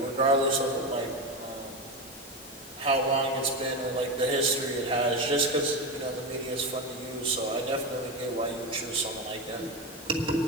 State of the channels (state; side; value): normal; both; correlation 0.17